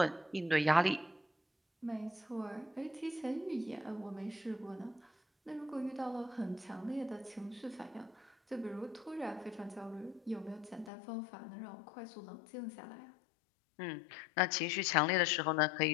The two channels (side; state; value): right; drops out; at 10.9 s